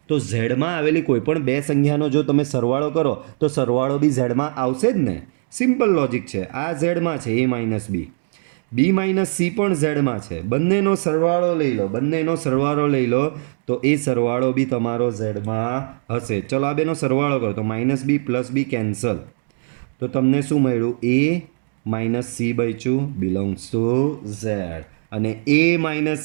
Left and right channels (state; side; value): silent; left; digital silence